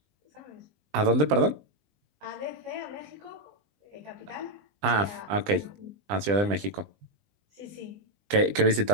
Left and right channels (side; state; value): left; late; 20 ms